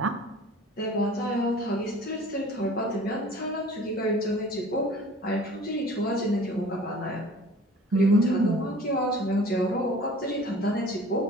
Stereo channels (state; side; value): normal; both; correlation 0.46